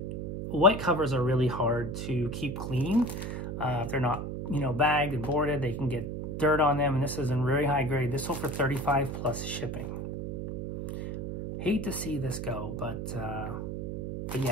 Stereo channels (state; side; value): noise; right; hum, 5 dB below the sound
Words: white covers are really hard to keep clean. If they're not, bagged and boarded, they can get dirt on them. And this is in very high grade. This sold for $35 plus shipping. Hate to see this go, but